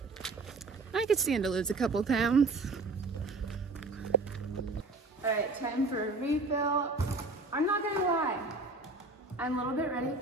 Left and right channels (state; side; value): quieter; left; 3.4 dB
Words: I could stand to lose a couple pounds. All right, time for a refill. I'm not gonna lie, I'm a little bit ready